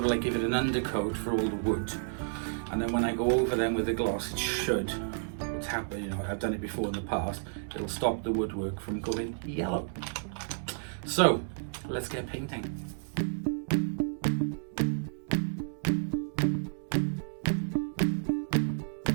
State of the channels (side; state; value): left; silent; digital silence